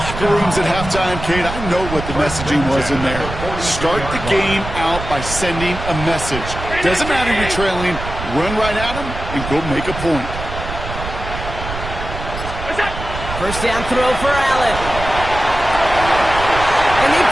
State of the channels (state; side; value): noise; right; rumble, 8 dB below the sound